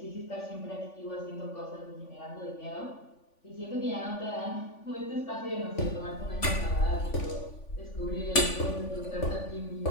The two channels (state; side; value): late; right; 3.5 ms